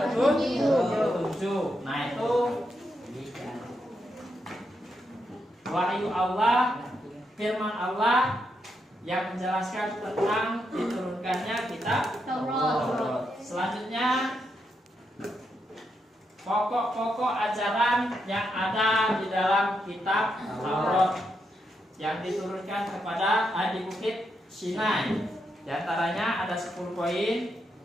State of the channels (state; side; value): normal; both; correlation 0.82